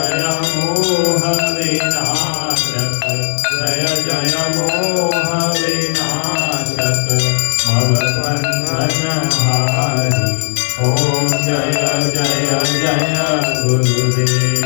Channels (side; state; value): right; silent; 70 dB below the other